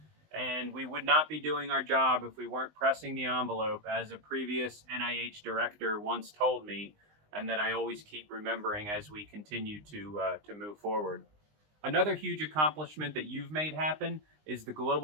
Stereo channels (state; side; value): late; left; 20 ms